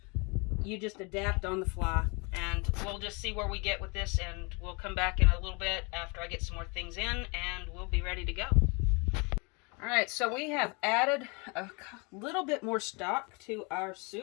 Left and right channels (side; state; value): right; quieter; 30.6 dB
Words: you just adapt on the fly. And we'll just see where we get with this, and we'll come back in a little bit after I get some more things in, and we'll be ready to go. Alright, so we have added a little bit more stock to our